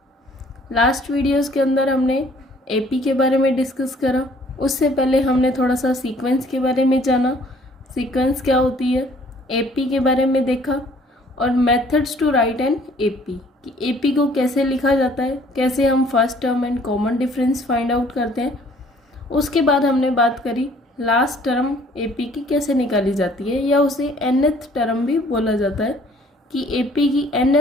Last videos के अंदर हमने एपी के बारे में डिस्कस करा. उससे पहले हमने थोड़ा सा सीक्वेंस के बारे में जाना. सीक्वेंस क्या होती है, एपी के बारे में देखा और methods to write an AP कि एपी को कैसे लिखा जाता है, कैसे हम first term and common difference find out करते हैं. उसके बाद हमने बात करी लास्ट टर्म एपी की कैसे निकाली जाती है, या उसे nth टर्म भी बोला जाता है कि एपी की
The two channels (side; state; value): both; normal; correlation 0.57